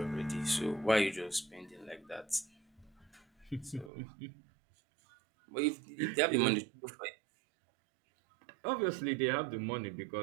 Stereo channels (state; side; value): drops out; left; at 3.9 s